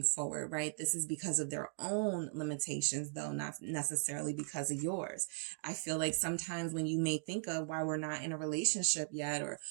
forward, right? This is because of their own limitations, though, not necessarily because of yours. I feel like sometimes when you may think of why we're not in a relationship yet, or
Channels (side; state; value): left; silent; digital silence